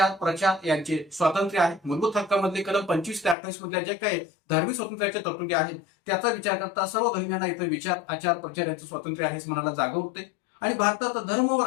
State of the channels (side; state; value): right; drops out; at 3.4 s